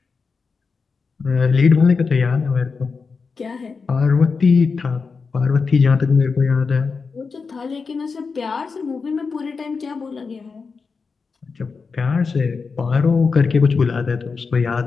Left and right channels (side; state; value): right; quieter; 4.9 dB